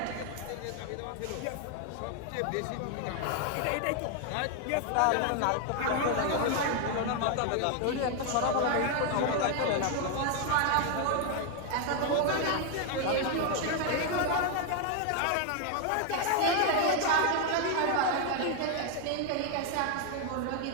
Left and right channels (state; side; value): different; both; correlation 0.00